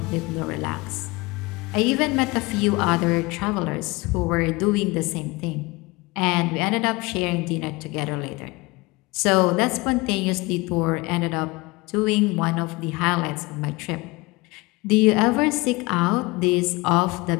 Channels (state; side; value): quieter; right; 23.8 dB